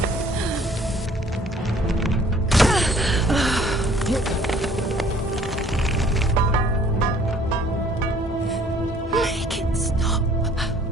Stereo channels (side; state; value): both; normal; correlation 0.56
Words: Make it stop.